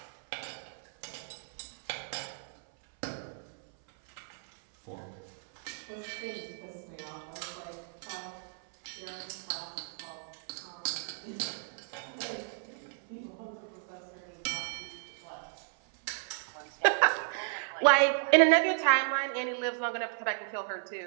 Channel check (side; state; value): left; silent; 55 dB below the other